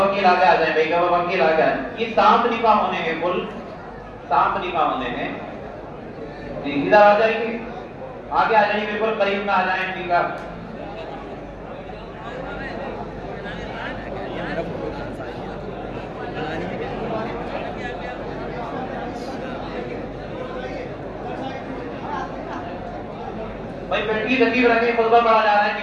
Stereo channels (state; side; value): identical; both; correlation 1.00